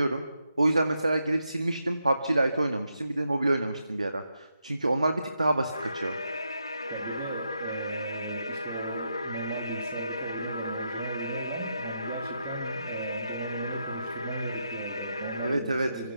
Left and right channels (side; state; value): both; inverted; correlation -0.82